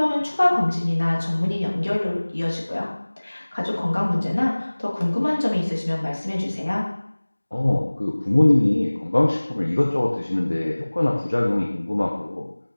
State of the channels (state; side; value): inverted; both; correlation -1.00